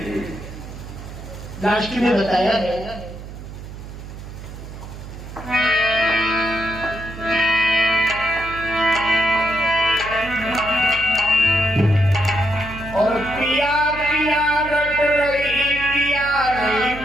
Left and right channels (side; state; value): right; noise; hum, 12 dB below the sound